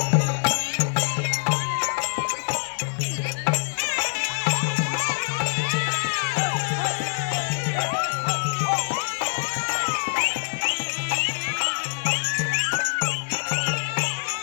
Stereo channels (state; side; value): silent; right; 62 dB below the other